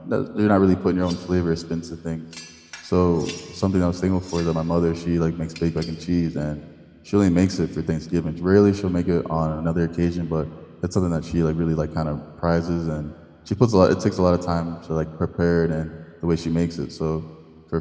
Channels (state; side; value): identical; both; correlation 1.00